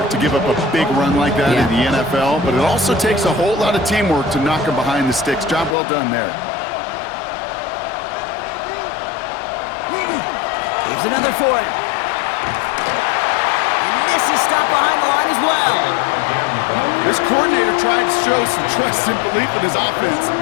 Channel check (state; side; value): drops out; right; at 5.8 s